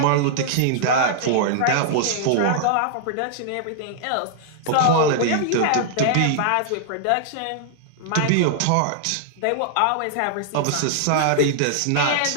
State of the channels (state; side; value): different; both; correlation -0.01